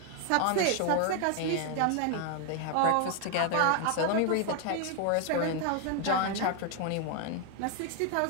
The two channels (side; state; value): both; different; correlation 0.01